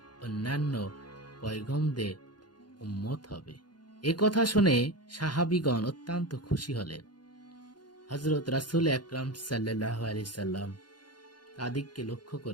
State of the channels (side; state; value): right; late; 0.71 ms